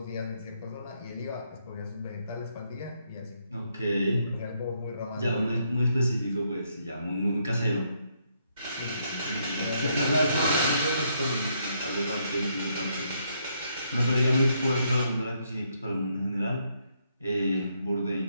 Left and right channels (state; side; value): inverted; both; correlation -0.75